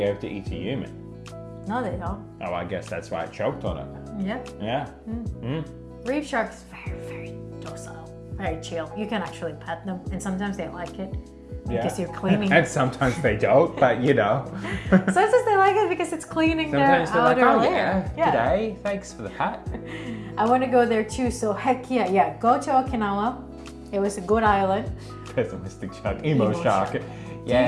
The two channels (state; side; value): identical; both; correlation 1.00